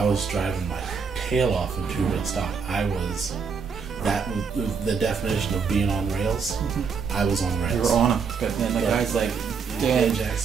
was driving my tail off in 2-wheel stock. That was the definition of being on rails. I was on rails. You were on them, but then the guy's like, "Dan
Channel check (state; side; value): quieter; left; 5.8 dB